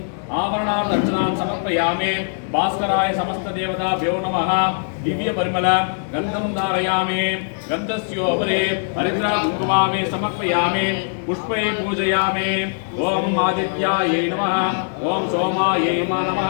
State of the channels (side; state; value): right; silent; digital silence